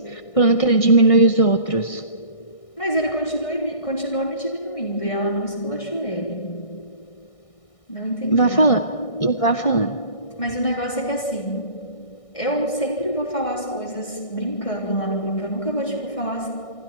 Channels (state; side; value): late; right; 1.6 ms